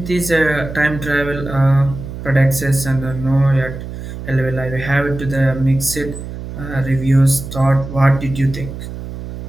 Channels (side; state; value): right; noise; hum, 10 dB below the sound